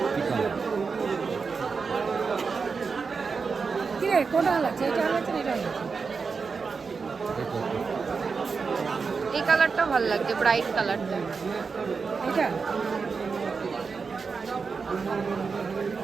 কালার। কি রে, কোনটা লাগছে? এটা লাগছে না এটা লাগছে? এই কালারটা ভালো লাগছে, ব্রাইট কালারটা। এটা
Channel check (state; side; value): quieter; left; 5.0 dB